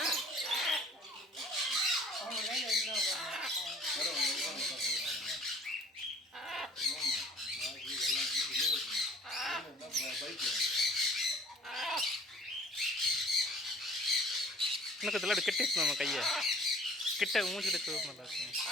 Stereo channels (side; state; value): both; normal; correlation 0.51